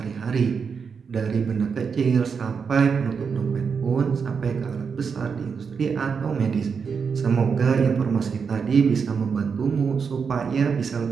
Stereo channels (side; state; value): left; quieter; 5.9 dB